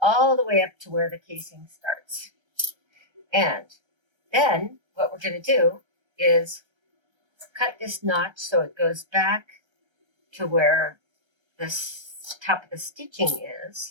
the way up to where the casing starts. And then what we're going to do is cut this notch so it goes back to where the top of the stitching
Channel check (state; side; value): late; left; 1.3 ms